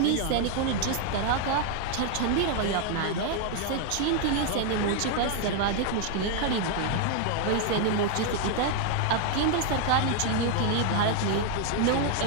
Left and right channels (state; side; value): different; both; correlation 0.00